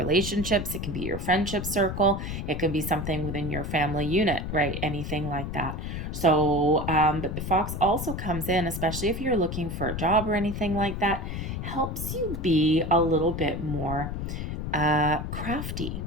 It can be your friendship circle. It can be something within your family unit, right? Anything like that. So, but the fox also comes in, especially if you're looking for a job or anything like that, helps you be a little bit more crafty.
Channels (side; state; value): left; noise; rumble, 5 dB below the sound